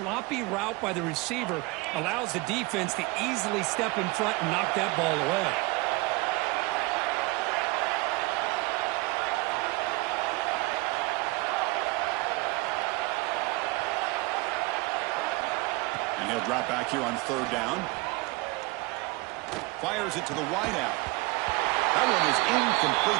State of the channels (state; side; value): quieter; left; 23.5 dB